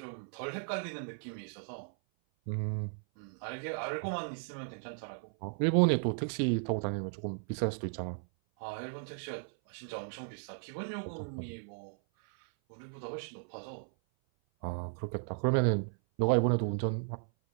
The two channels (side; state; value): left; silent; 54 dB below the other